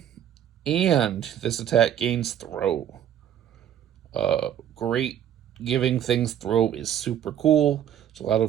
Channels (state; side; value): quieter; left; 10.2 dB